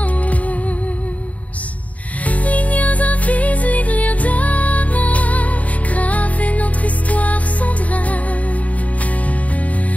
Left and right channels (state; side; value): late; right; 0.069 ms